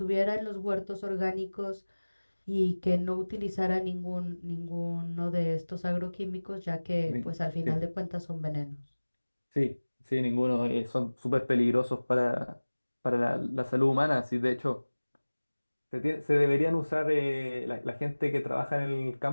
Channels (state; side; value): inverted; both; correlation -1.00